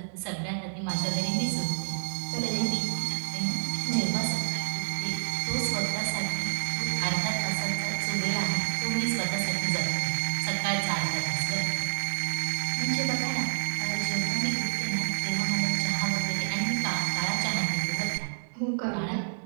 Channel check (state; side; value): silent; left; digital silence